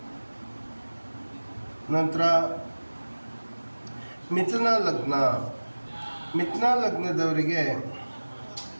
ನಂತರ ಮಿಥುನ ಲಗ್ನದವರಿಗೆ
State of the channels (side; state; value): both; inverted; correlation -1.00